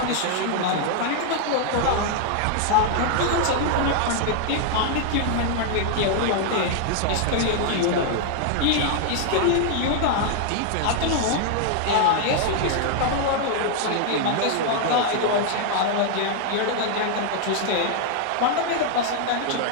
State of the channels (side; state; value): both; different; correlation 0.00